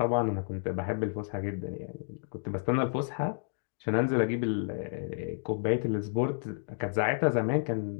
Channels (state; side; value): silent; right; digital silence